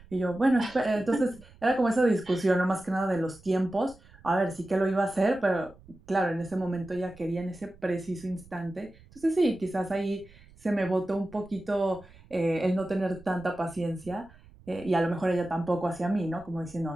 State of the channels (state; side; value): noise; right; rumble, 24 dB below the sound